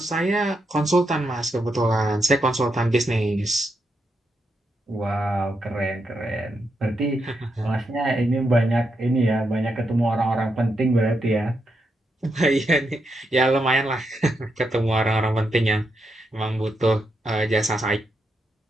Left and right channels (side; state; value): both; normal; correlation 0.83